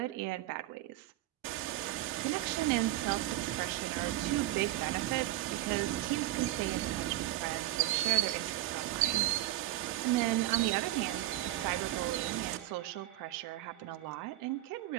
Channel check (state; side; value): quieter; left; 15.5 dB